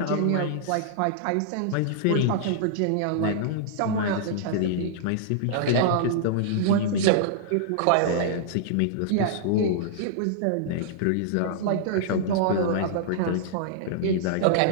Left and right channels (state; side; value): different; both; correlation -0.02